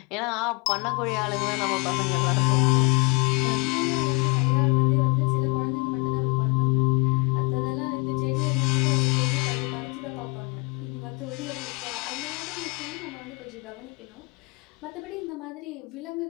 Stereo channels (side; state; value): right; quieter; 31.4 dB